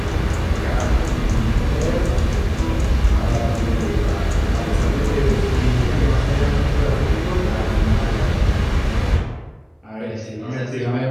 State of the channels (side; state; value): both; identical; correlation 1.00